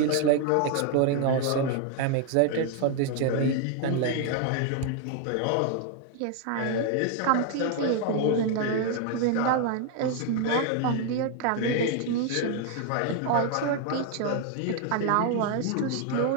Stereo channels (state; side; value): different; both; correlation 0.00